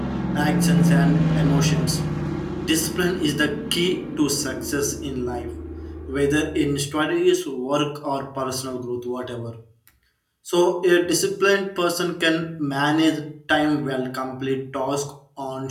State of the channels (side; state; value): both; identical; correlation 1.00